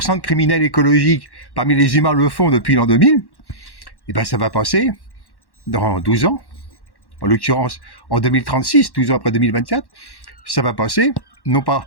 de criminels écologiques parmi les humains le font depuis l'an 2000, et ben ça va passer dans 12 ans, en l'occurrence en 2036, 12 ans après 2024, ça va passer non pas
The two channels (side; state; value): right; late; 1.1 ms